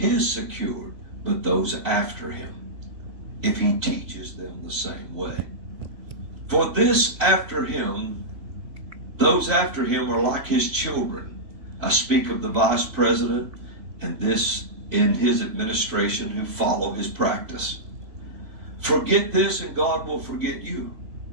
secured, but those after him, if he teaches them the same way. For this after him, those after him are like his children. I speak of the vice president and this in his administration who follow his practice. Forget this and God will forget you.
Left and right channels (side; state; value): left; late; 2.9 ms